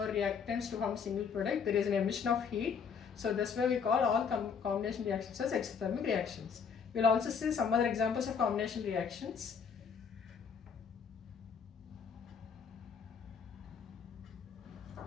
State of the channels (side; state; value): right; quieter; 6.4 dB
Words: reactants to form a single product, there is an emission of heat. So that's why we call all combination reactions as exothermic reactions. We'll also see some other examples of combination reactions.